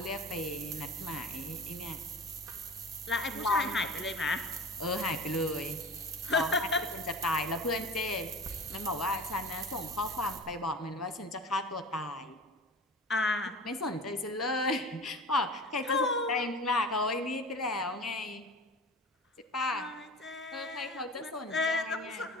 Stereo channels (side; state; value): both; normal; correlation 0.36